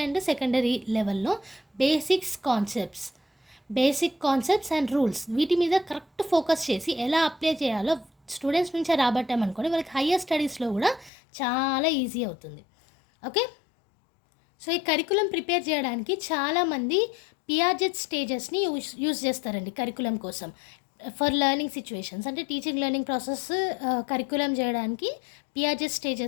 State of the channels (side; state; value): right; drops out; at 11.1 s